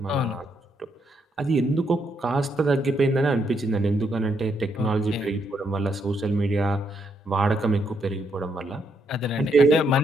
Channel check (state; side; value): normal; both; correlation 0.76